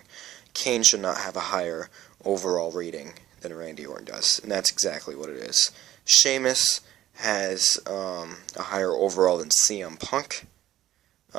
Kane should not have a higher overall rating than Randy Orton does, and that's exactly what it is. Sheamus has a higher overall than CM Punk.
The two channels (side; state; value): left; quieter; 13.4 dB